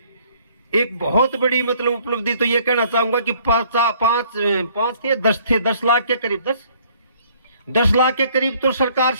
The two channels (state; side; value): inverted; both; correlation -0.60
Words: एक बहुत बड़ी मतलब उपलब्धि तो ये कहना चाहूंगा कि 10 लाख के करीब 10 लाख के करीब तो सरकार